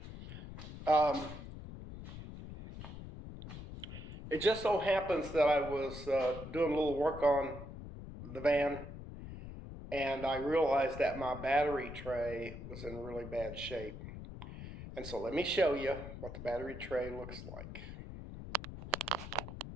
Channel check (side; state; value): left; noise; rumble, 11 dB below the sound